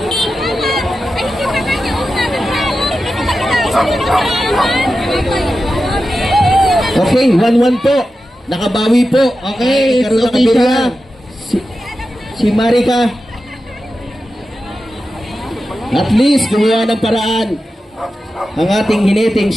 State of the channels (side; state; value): both; normal; correlation 0.92